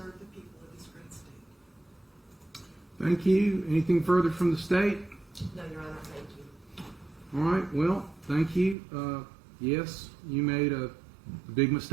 the people of this great state. Thank you. Anything further from the state? No, Your Honor, thank you. All right, well, thank you. Yes, you made a big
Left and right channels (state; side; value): drops out; left; at 8.8 s